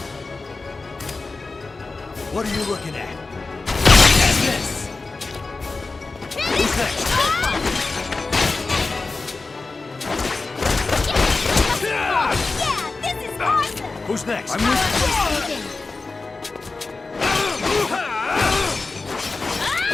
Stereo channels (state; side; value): quieter; right; 3.8 dB